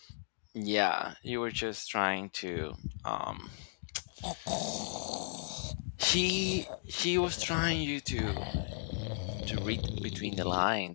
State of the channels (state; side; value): silent; right; digital silence